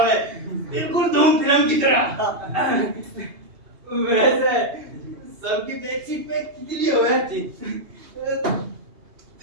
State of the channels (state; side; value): late; left; 2.8 ms